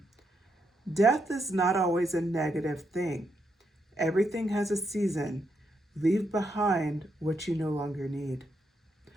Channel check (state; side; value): normal; both; correlation 0.80